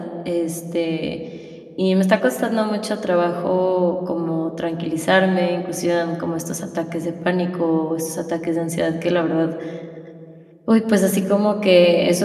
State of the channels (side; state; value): both; identical; correlation 1.00